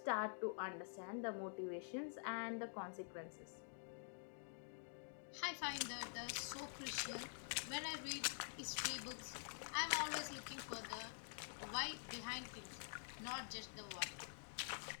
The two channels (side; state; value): right; silent; digital silence